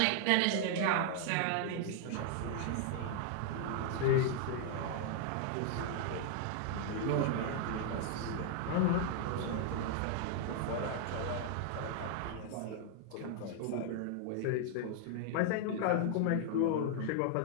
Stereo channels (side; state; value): both; different; correlation 0.00